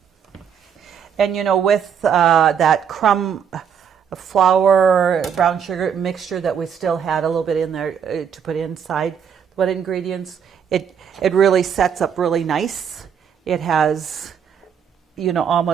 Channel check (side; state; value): left; quieter; 7.6 dB